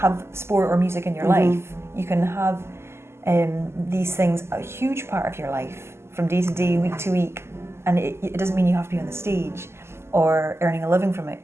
sport or music in your life. You can have these things a huge part of your life from day to day, week to week, and it doesn't mean you have to be on the stage or earning a living from it.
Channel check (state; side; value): late; left; 0.12 ms